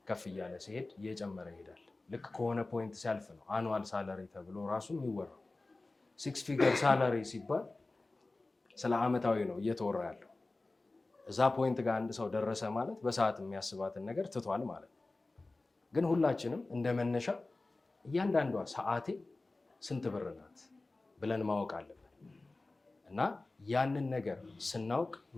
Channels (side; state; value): right; quieter; 3.2 dB